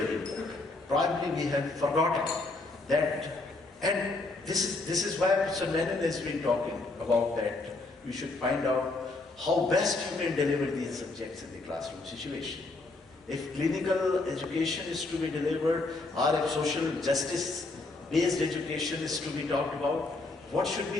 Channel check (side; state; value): right; quieter; 3.3 dB